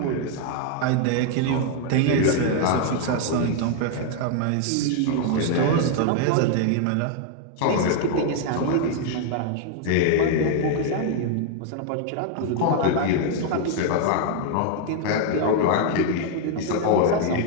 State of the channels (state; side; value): different; both; correlation 0.00